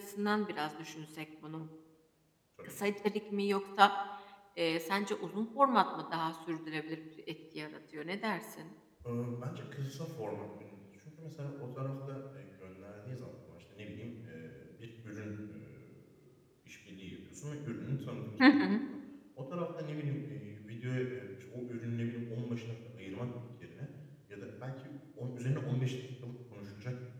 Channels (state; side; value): identical; both; correlation 1.00